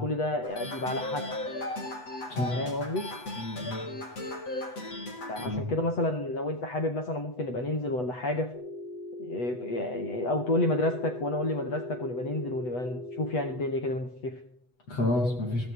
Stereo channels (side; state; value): right; late; 8.1 ms